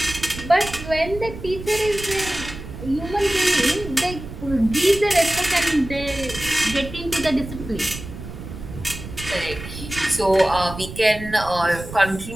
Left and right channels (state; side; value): noise; right; rumble, 11 dB below the sound